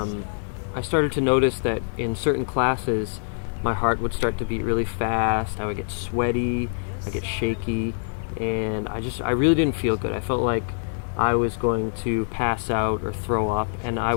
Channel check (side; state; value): right; silent; 62 dB below the other